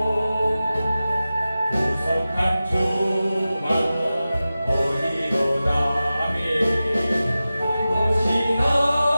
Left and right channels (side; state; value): both; inverted; correlation -0.95